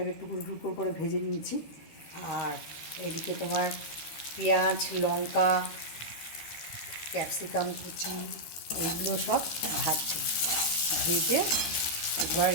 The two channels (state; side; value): late; right; 13 ms